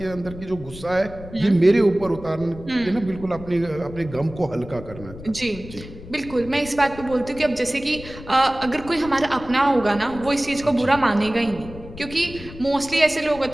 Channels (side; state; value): left; noise; rumble, 15 dB below the sound